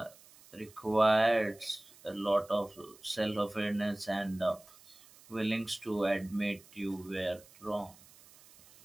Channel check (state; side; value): noise; right; hiss, 24 dB below the sound